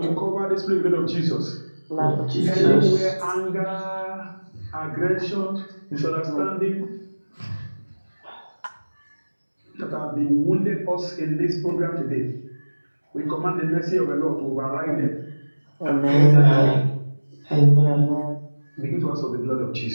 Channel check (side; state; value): both; inverted; correlation -1.00